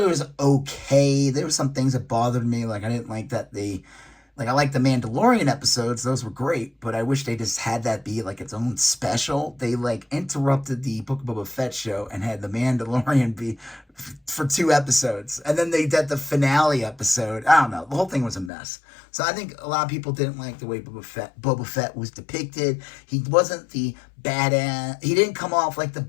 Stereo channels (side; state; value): right; drops out; at 18.5 s